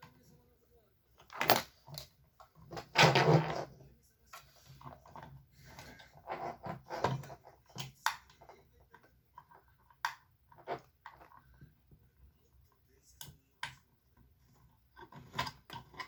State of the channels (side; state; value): both; identical; correlation 1.00